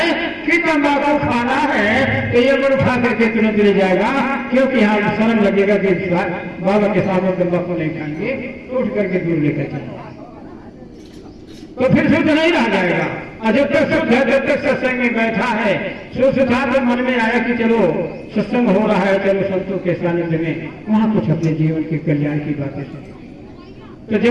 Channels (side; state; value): both; identical; correlation 1.00